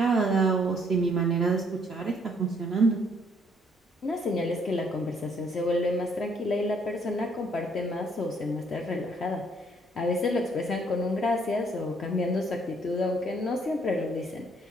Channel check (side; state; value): both; normal; correlation 0.66